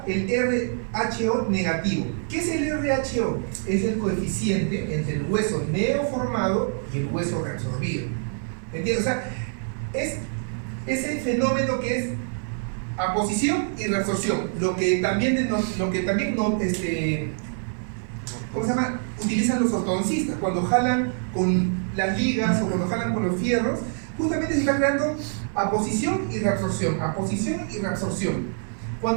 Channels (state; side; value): silent; left; 57 dB below the other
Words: el RHO negativo. ¿Qué es el RHO? Es el coeficiente entre el hueso neoformado y el hueso reabsorbido. ¿Entiendes? O sea, es ese fenómeno que es aposición y reabsorción, lo que también ¿cómo se llama? Utilizan los ortodoncistas cuando jalan con las ligas o cuando jalan con los fierros. Justamente se está creando aposición y reabsorción, aposición y reabsorción.